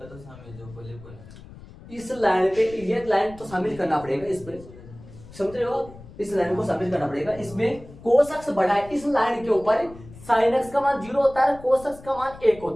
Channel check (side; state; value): left; noise; rumble, 18 dB below the sound